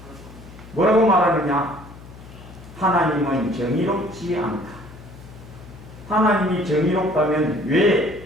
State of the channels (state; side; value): noise; left; hum, 18 dB below the sound